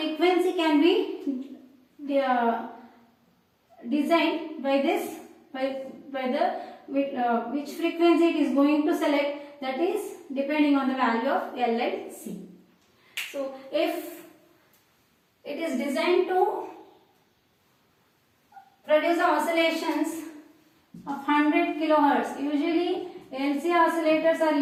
can be designed by this, which frequency it is going to select, that is depending on the value of L and C. So if it is designed to produce oscillations of 100 kilohertz, usually LC oscillators are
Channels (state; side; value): identical; both; correlation 1.00